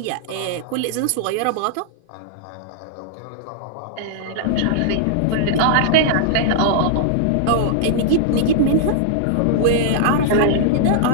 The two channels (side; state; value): both; different; correlation -0.01